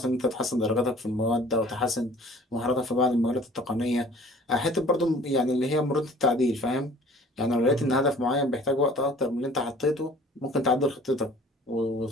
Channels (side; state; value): both; normal; correlation 0.50